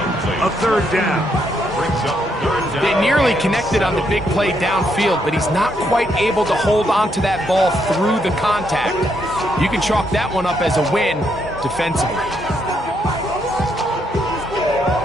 a third down. They nearly connected on the big play downfield, but he's not quite able to hold on to that ball through the contact. You can chalk that one up as a win defensively.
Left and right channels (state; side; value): normal; both; correlation 0.76